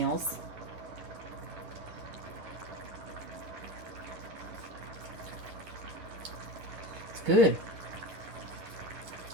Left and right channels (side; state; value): left; late; 10 ms